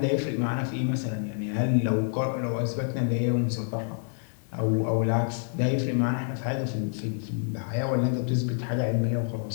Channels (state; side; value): silent; right; 60 dB below the other